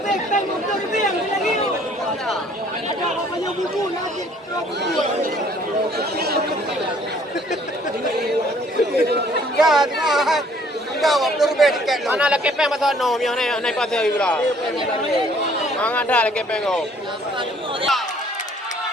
tengah. Jawab berbeza tiket lo. Mana lagi peng pasal no, yang naik pasal itu lah. Ang ada lagi peng go.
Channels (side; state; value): both; normal; correlation 0.59